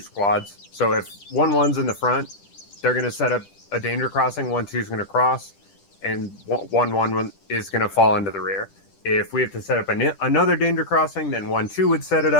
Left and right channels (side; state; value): right; late; 10 ms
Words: So if 1-1's in the front, they're going to set up a danger crossing, 1-2's going to cross, and 1-1 is going to fall into the rear. If we have to set up another danger crossing, then 1-2 would set it